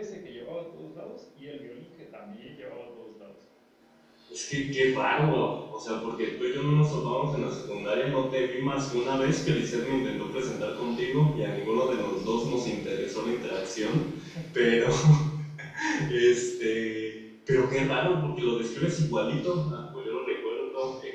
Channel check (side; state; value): both; identical; correlation 1.00